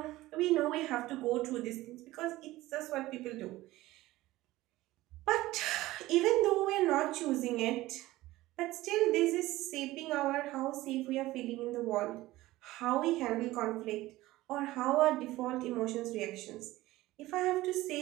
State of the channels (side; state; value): left; quieter; 17.5 dB